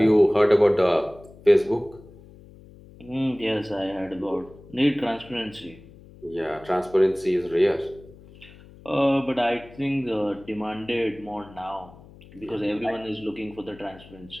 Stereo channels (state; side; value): noise; left; hum, 22 dB below the sound